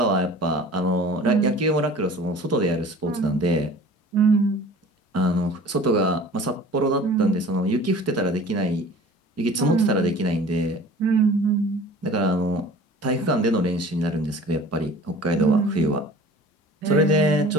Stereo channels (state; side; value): normal; both; correlation 0.44